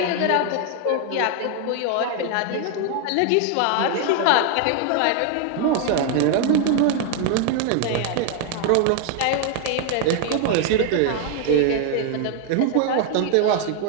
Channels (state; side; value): different; both; correlation 0.00